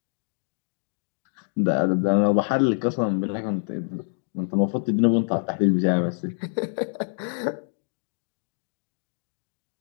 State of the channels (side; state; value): right; silent; 61 dB below the other